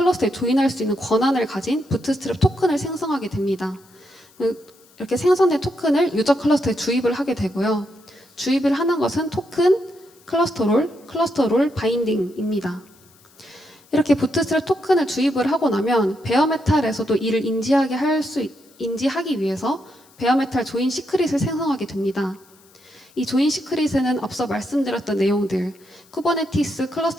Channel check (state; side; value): noise; left; hiss, 29 dB below the sound